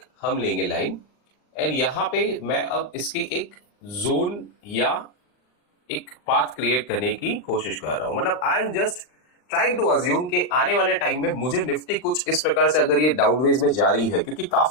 हम लेंगे लाइन एंड यहां पे मैं अब इसकी एक जोन या एक पाथ क्रिएट करने की कोशिश कर रहा हूं। मतलब I am just trying to assume कि आने वाले टाइम में मुझे निफ्टी कुछ इस प्रकार से अगर ये डाउनवेज में जा रही है, क्योंकि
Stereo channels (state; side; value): late; right; 39 ms